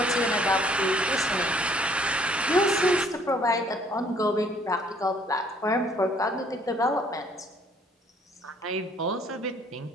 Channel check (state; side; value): normal; both; correlation 0.61